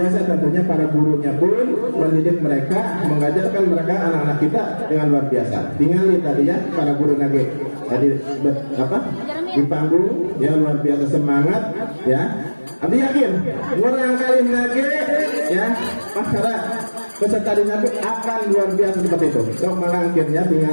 tentunya para gurunya pun mendidik mereka mengajarkan mereka anak-anak kita dengan luar biasa tinggal tadi ya para guru nage tadi di panggung ya luar biasa semangat ya Abi yakin orang kali nage ya para peserta di nage akan luar biasa seperti itu so malangkirnya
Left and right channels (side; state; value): both; inverted; correlation -1.00